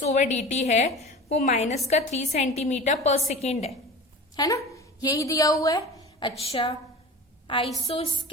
ओवर dt है वो माइनस का 3 सेंटीमीटर पर सेकेंड है ना, यही दिया हुआ है। अच्छा,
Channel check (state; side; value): normal; both; correlation 0.35